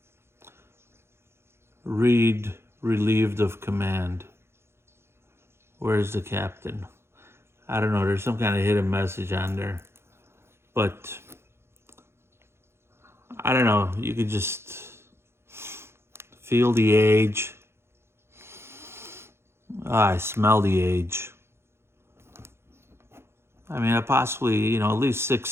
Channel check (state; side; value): late; left; 0.12 ms